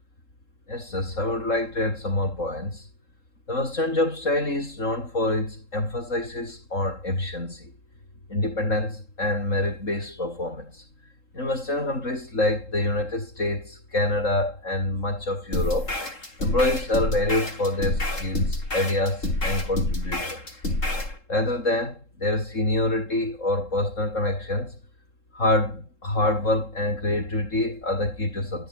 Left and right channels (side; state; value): right; late; 3.7 ms